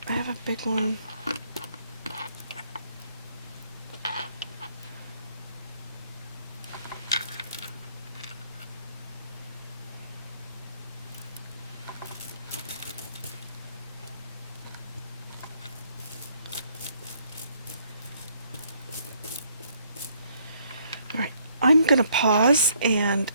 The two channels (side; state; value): both; inverted; correlation -0.67